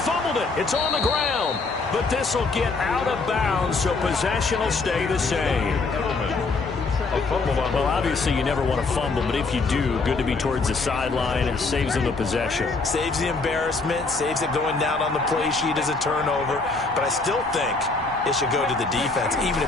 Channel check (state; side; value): quieter; right; 3.9 dB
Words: it. It's on the ground. But this will get out of bounds, so possession will stay the same. Well, obviously you never want to fumble, but if you do, good to be towards the sideline and saves them the possession. Saves the embarrassment, saves it going down on the play sheet as a turnover. But I still think it should go to the defense, even